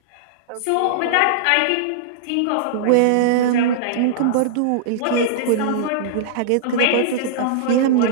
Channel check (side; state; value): both; different; correlation -0.02